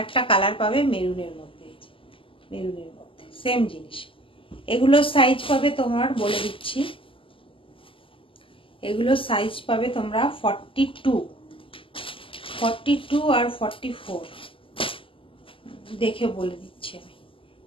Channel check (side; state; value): right; late; 0.25 ms